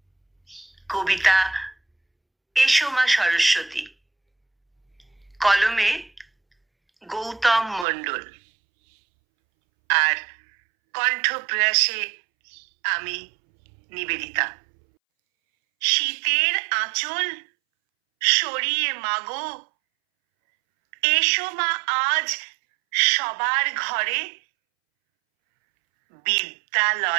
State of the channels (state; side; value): drops out; left; at 7.9 s